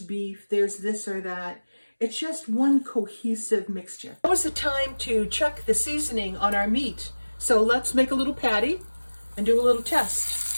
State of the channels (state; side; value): inverted; both; correlation -1.00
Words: beef, there's this or that. It's just one cohesive mixture. Now is the time to check the seasoning on our meat. So let's make a little patty and do a little test.